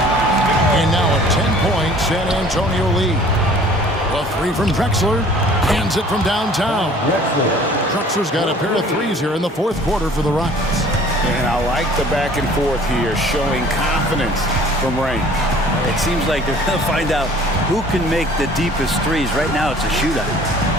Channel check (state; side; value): normal; both; correlation 0.51